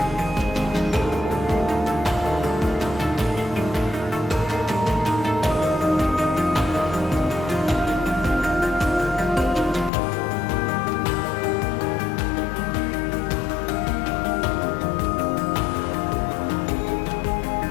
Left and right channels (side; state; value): right; drops out; at 9.9 s